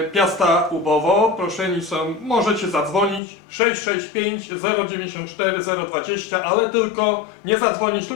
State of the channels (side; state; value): right; drops out; at 3.2 s